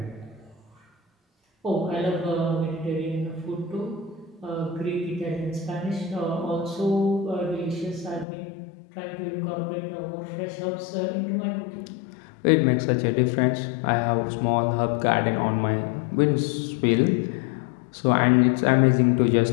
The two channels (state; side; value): drops out; right; at 8.2 s